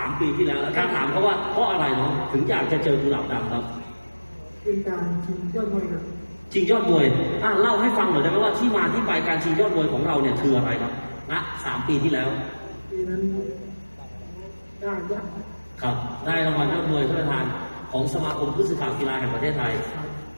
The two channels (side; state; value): both; inverted; correlation -1.00